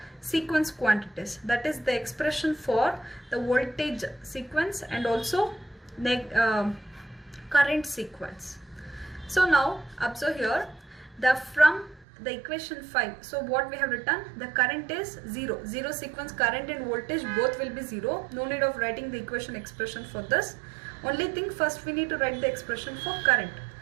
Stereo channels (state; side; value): drops out; left; at 12.1 s